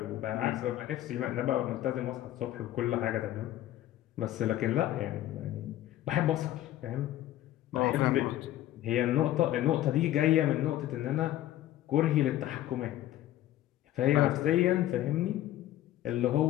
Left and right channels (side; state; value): right; quieter; 13.7 dB